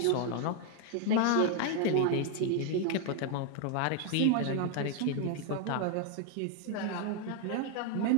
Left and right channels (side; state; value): both; different; correlation 0.00